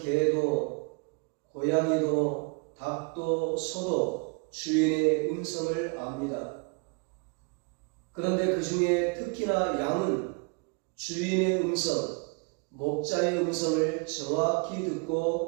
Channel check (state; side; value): quieter; left; 33.5 dB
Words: 고양이도, 닭도, 소도 주인의 음성을 압니다. 그런데 그 중에 특히나 양은 주인의 음성, 목자의 음성을 정확히